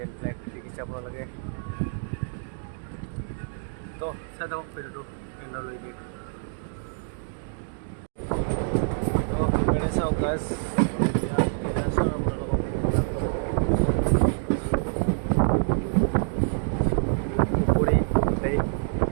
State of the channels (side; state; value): left; silent; digital silence